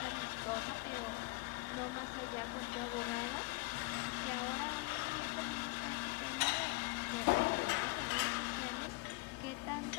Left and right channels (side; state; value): right; quieter; 24.6 dB